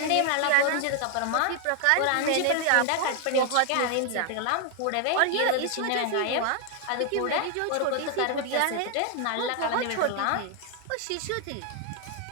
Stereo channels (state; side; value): different; both; correlation 0.00